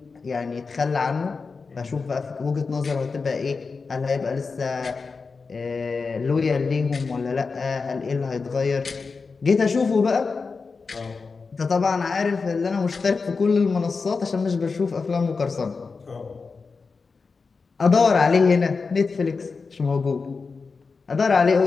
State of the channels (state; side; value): quieter; right; 4.6 dB